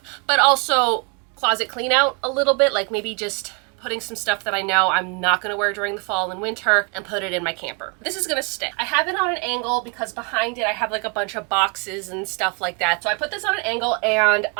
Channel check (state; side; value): quieter; left; 34.1 dB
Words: but also closet clean out a little bit, like maybe just putting some stuff that I know I'm not gonna wear during the fall and winter and put it in my camper. This is gonna stay. I have it on an angle because behind it I have like a bunch of boxes and stuff like that. So I put this on an angle and